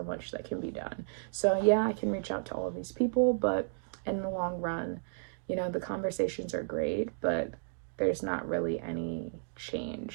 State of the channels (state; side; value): silent; left; digital silence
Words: much that can be done. So yeah, I can reach out to all of these people, but in the long run, the conversations are great, but there's not really any